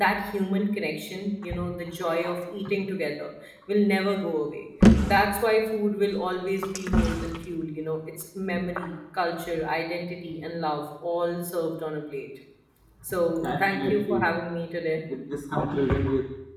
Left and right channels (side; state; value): both; identical; correlation 1.00